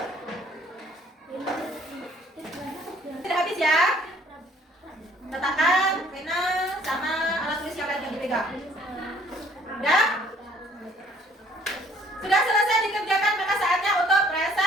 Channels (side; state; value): both; normal; correlation 0.59